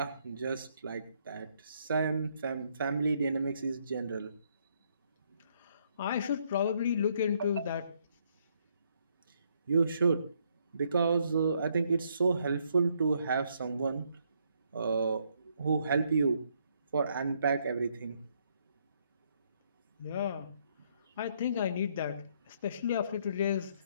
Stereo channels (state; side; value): inverted; both; correlation -0.71